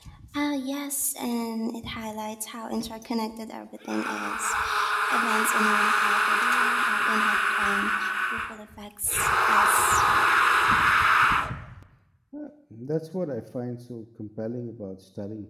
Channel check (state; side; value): identical; both; correlation 1.00